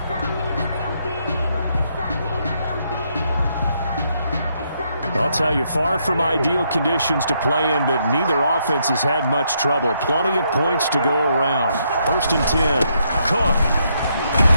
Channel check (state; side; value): inverted; both; correlation -0.75